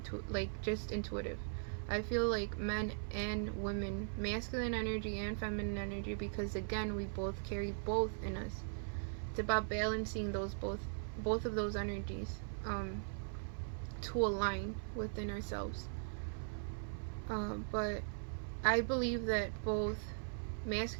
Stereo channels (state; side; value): silent; left; 51 dB below the other